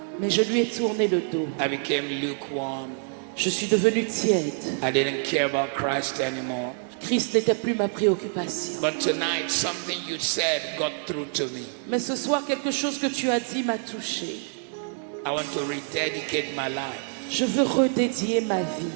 mais je lui ai tourné le dos. I became lukewarm. Je suis devenu tiède. I didn't care about Christ anymore. Christ n'était plus ma préoccupation. But tonight, something you said got through to me. Mais ce soir, quelque chose que tu as dit m'a touché. I want to rededicate my life. Je veux redédier ma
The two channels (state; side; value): silent; left; 56 dB below the other